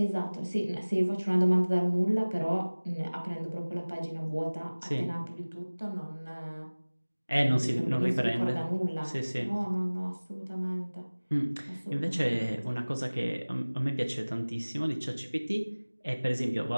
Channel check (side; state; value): both; inverted; correlation -1.00